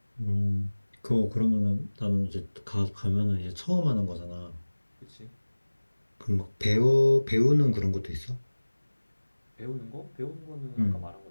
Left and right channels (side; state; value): both; inverted; correlation -1.00